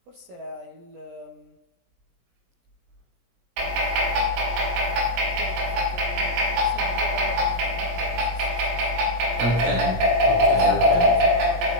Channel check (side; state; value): left; late; 17 ms